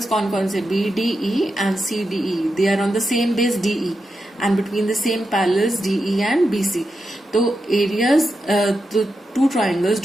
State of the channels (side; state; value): both; normal; correlation 0.88